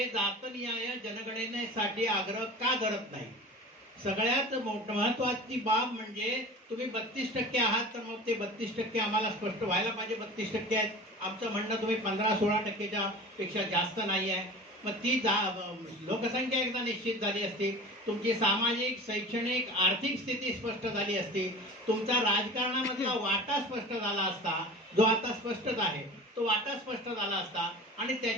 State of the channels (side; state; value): both; normal; correlation 0.36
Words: जातनिहाय जनगणनेसाठी आग्रह का धरत नाही. सगळ्यात महत्वाची बाब म्हणजे तुम्ही 32% आहात तर मग ते 32% आम्हाला स्पष्ट व्हायला पाहिजे. 32% आहेत आमचं म्हणणं, तुम्ही 15-16% पेक्षा जास्त नाही आहे. मग ती लोकसंख्या एकदा निश्चित झाली असती, तुमची सामाजिक, शैक्षणिक, आर्थिक स्थिती स्पष्ट झाली असती, तुमचा राजकारणामधला वाटा स्पष्ट झाला असता, जो आता स्पष्टच आहे तो वाटा स्पष्ट झाला असता. आणि